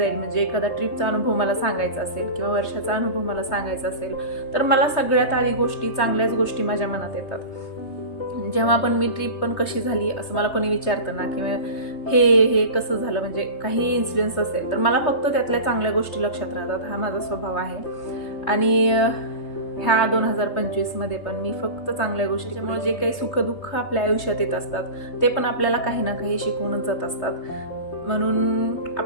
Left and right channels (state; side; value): late; right; 3.3 ms